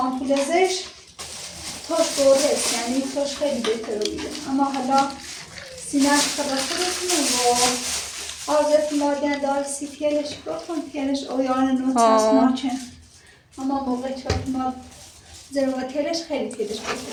توش برده یعنی توش خیلی بهتر بوده اما حالا سینه‌اش خدا خودتونه و آزت مادن دار سی پیلش بکن پیلش اویان نوت هست ناچن اما موقع چاک ما زرواتیلش خیلی پیلش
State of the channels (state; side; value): identical; both; correlation 1.00